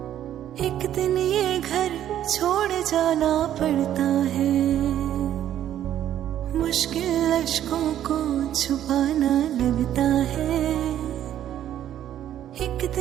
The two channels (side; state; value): left; quieter; 11.3 dB